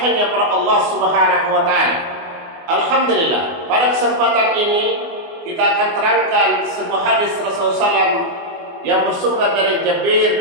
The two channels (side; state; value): left; late; 24 ms